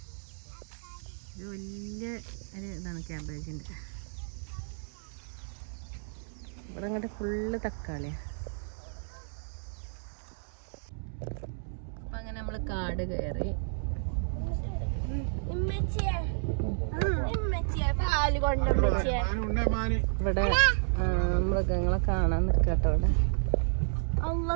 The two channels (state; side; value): silent; left; digital silence